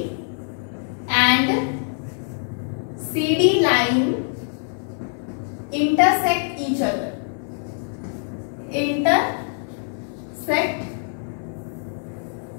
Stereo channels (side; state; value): right; silent; digital silence